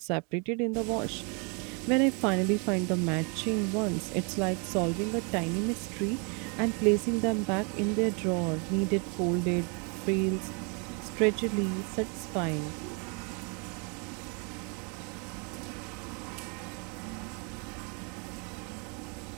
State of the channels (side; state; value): left; quieter; 34.5 dB